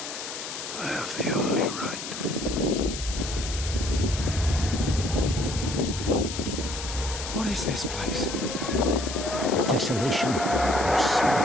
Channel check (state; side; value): noise; left; hiss, 8 dB below the sound